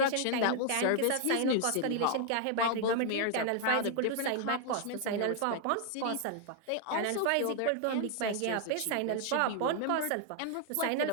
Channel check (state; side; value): different; both; correlation 0.00